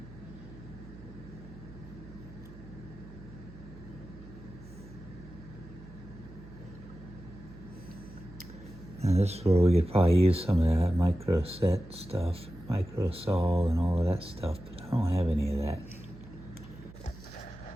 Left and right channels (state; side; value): noise; right; hum, 18 dB below the sound